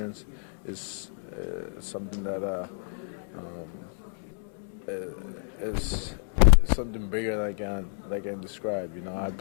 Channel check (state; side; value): silent; right; 58 dB below the other